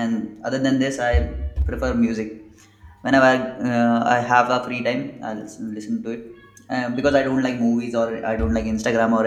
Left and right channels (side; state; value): both; identical; correlation 1.00